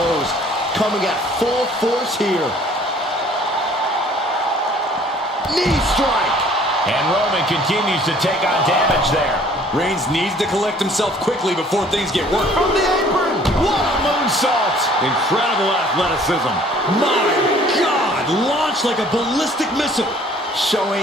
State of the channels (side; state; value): both; normal; correlation 0.55